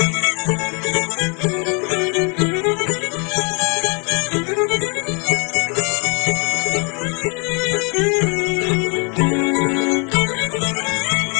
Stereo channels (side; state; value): right; quieter; 34.7 dB